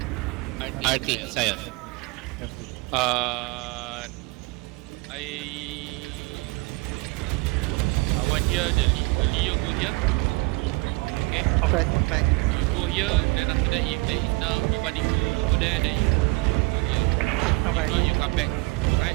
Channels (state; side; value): quieter; left; 26.5 dB